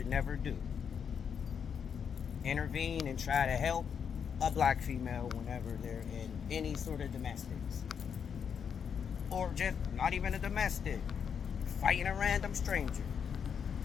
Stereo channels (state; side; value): quieter; right; 7.2 dB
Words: never do: intervene and try to help a black female whenever they're in any sort of domestics. Or just not even a domestic, fighting a random stranger.